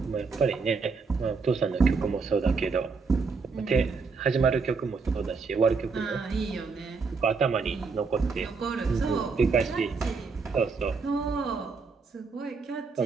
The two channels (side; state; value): left; quieter; 4.7 dB